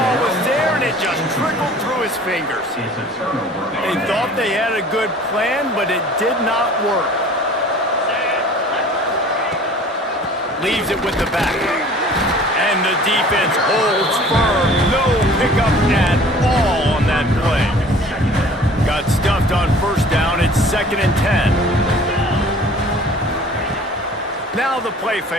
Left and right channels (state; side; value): normal; both; correlation 0.48